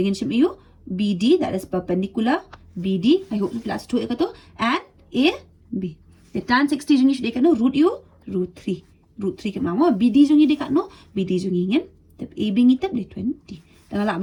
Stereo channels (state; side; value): identical; both; correlation 1.00